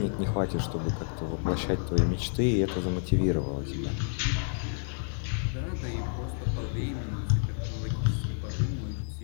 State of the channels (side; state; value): right; silent; digital silence